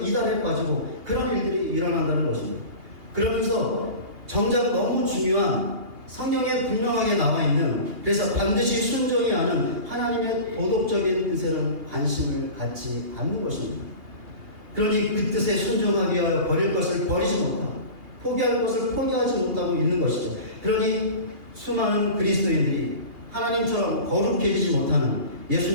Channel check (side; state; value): left; late; 2.8 ms